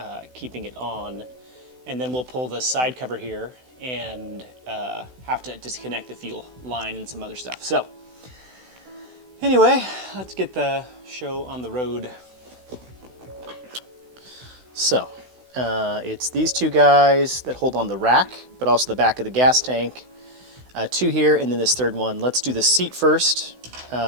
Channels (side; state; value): left; late; 16 ms